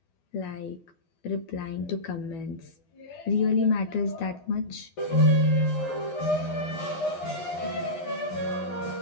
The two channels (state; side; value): late; right; 11 ms